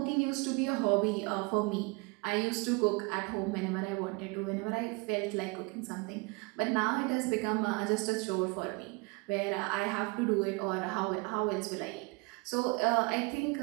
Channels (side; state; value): left; quieter; 27.7 dB